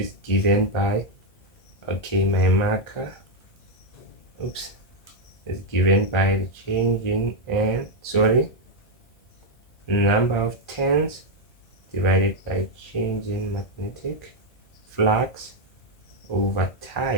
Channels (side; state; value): right; late; 1.9 ms